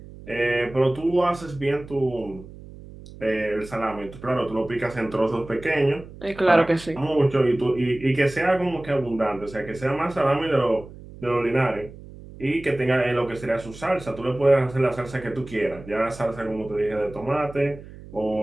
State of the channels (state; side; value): noise; right; hum, 17 dB below the sound